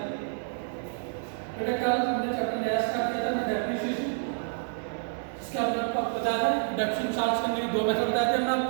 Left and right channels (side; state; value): left; silent; digital silence